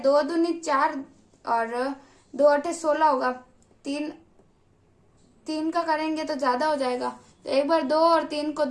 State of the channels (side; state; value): both; identical; correlation 1.00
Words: 2 दूनी 4 और 2 8 16 होगा। 3 का करेंगे तो ज्यादा हो जाएगा, तो एक बार 2 और 3 को